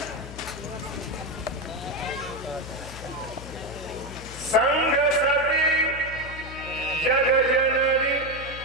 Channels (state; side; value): noise; left; hum, 13 dB below the sound